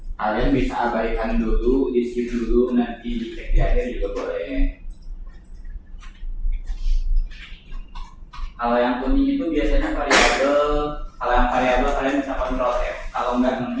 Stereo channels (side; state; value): both; identical; correlation 1.00